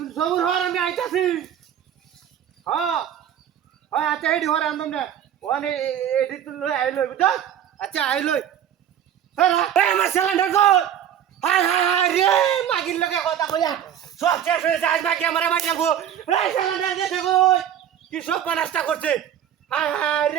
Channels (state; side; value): quieter; left; 9.9 dB